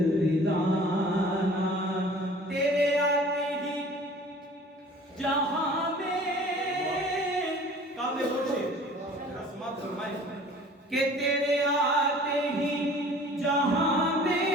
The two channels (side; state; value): both; normal; correlation 0.47